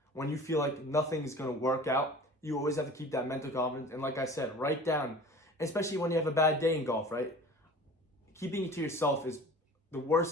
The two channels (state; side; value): normal; both; correlation 0.42